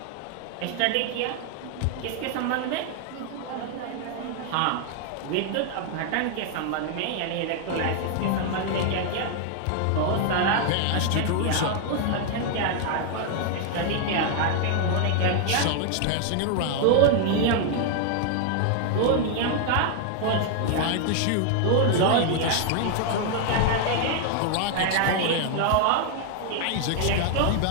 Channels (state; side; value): different; both; correlation 0.00